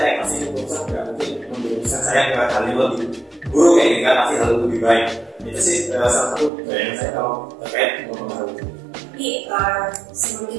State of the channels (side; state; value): left; drops out; at 6.5 s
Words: pasti keputusan tidak mungkin mengambil keputusan saya ke hal yang lebih buruk kayak ini kan, pasti hal lebih baik. Itu sih salah satu yang saya tahu terkait mempengaruhi. Jadi sebelum